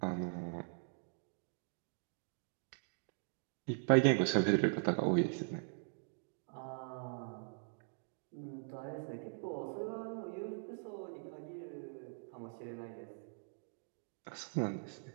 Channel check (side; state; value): left; silent; digital silence